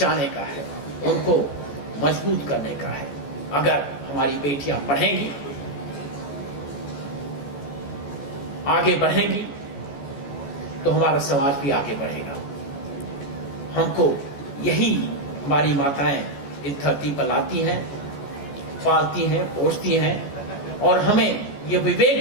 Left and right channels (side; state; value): right; late; 14 ms